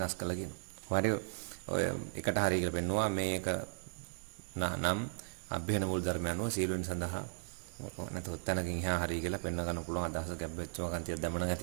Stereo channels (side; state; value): left; silent; digital silence